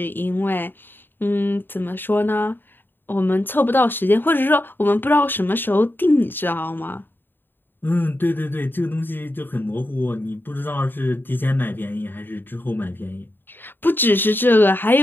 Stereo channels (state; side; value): late; right; 0.096 ms